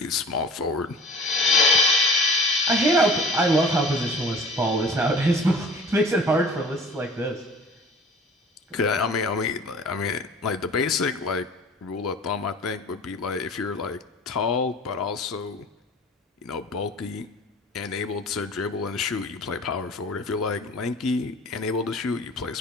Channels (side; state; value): both; normal; correlation 0.44